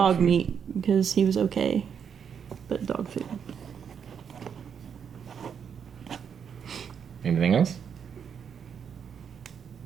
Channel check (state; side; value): quieter; left; 7.4 dB